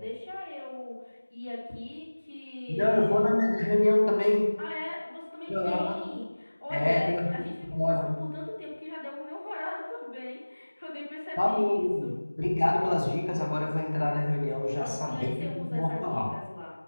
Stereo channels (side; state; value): both; inverted; correlation -1.00